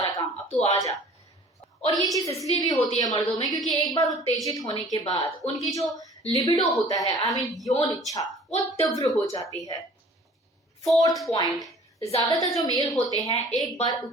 काम, अब तू आ जा। और ये चीज इसलिए भी होती है मर्दों में क्योंकि एक बार उत्तेजित होने के बाद उनकी जो लिबिडो होता है, आई मीन यौन इच्छा, वो तीव्र हो जाती है। 4th पॉइंट, ज्यादातर जो मेल होते हैं एक बार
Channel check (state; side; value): normal; both; correlation 0.49